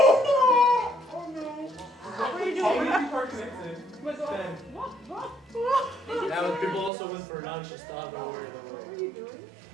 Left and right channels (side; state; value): left; drops out; at 6.9 s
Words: no! What were you doing? How many people are connected? What? Yeah, but people also went for lunch and stuff. Don't worry, don't worry. What are you doing?